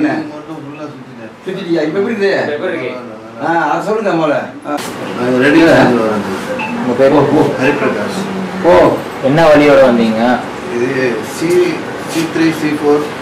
மட்டும் ஃபுல்லா சுத்திட்டியா? இப்ப எப்படி இருக்கு? அது சொல்லுங்க முதல்ல. உங்க பேர் ஹரிபிரகாஷ். என்ன வழியோட வந்தீங்க? இது C3 C4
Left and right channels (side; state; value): both; identical; correlation 1.00